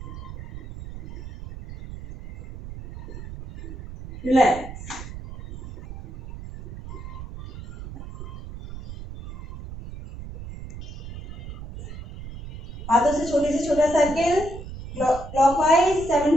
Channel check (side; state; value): right; noise; rumble, 11 dB below the sound